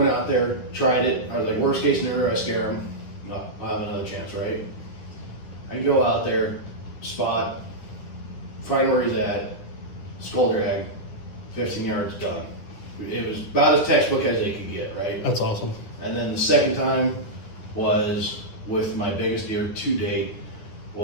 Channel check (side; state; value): right; late; 9.4 ms